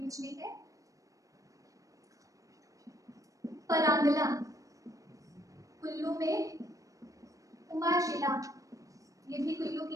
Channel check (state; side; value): late; left; 0.16 ms